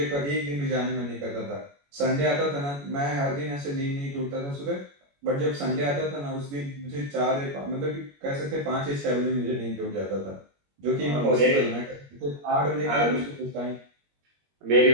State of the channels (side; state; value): left; late; 21 ms